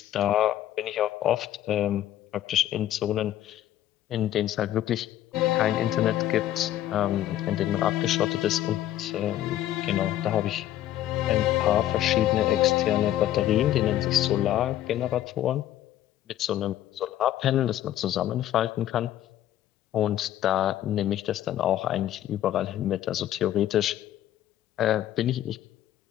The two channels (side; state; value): right; quieter; 12.6 dB